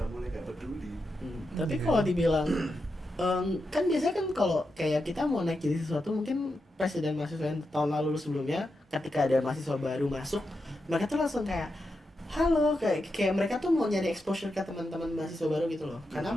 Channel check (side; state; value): both; normal; correlation 0.87